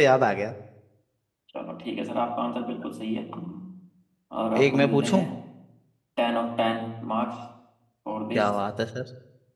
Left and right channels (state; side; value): identical; both; correlation 1.00